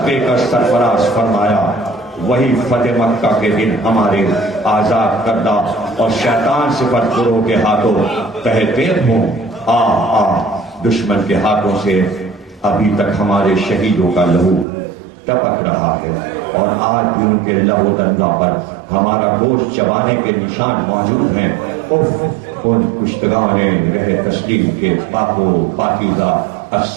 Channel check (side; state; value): left; drops out; at 14.7 s